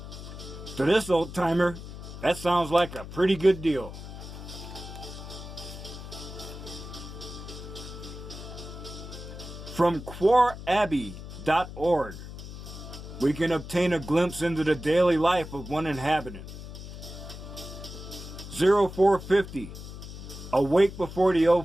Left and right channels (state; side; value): noise; left; hum, 11 dB below the sound